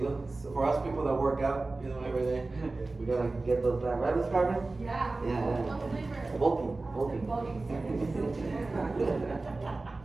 know, so for us people that work out, you know, every day, we gotta get those back. Right, Miss Carmen? Yeah. Yeah. What flavor? Bulking.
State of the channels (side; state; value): left; quieter; 3.3 dB